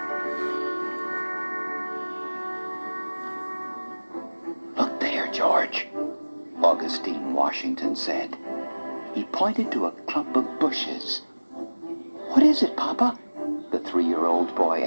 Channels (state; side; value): inverted; both; correlation -1.00